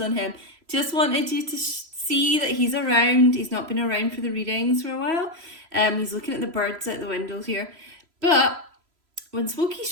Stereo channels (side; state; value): left; late; 3.0 ms